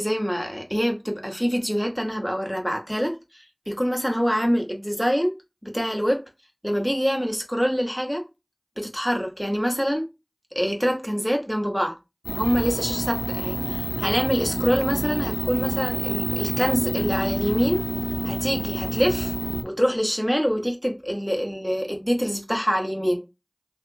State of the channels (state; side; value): identical; both; correlation 1.00